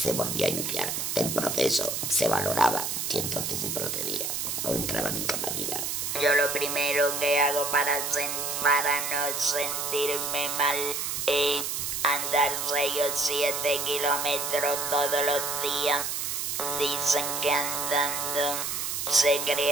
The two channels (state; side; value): noise; right; hiss, 2 dB below the sound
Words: volvía a iniciar el proceso, se valoraba y entonces se procedía o entraba en incapacidad. Yo lo primero que hago para no sentirme mal es andar 6 o 7 kilómetros todos los días. Dicen que andando se